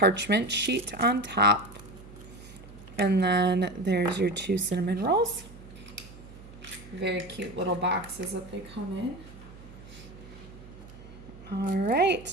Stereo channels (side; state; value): right; noise; hum, 18 dB below the sound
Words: sheet on top. And then there's your 2 cinnamon rolls. Very cute little boxes that they come in. All